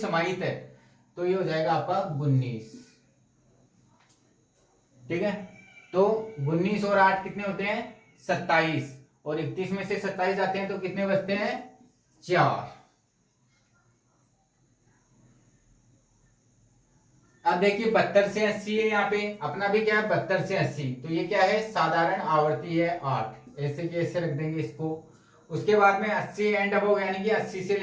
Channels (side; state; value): both; identical; correlation 1.00